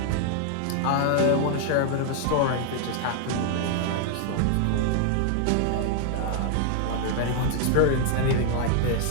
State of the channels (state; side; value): different; both; correlation 0.00